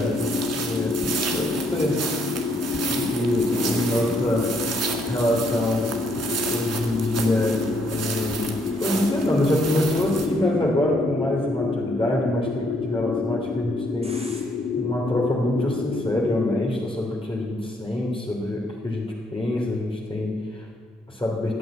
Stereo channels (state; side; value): normal; both; correlation 0.71